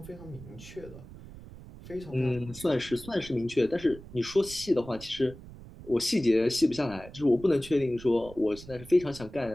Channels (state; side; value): noise; right; rumble, 16 dB below the sound